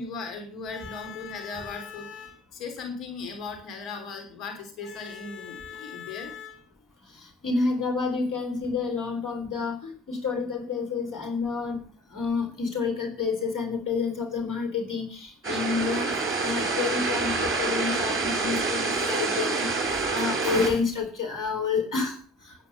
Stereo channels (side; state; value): both; normal; correlation 0.43